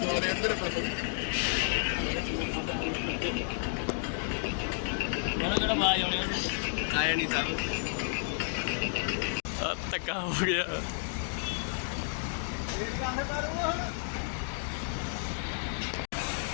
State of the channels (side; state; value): right; silent; digital silence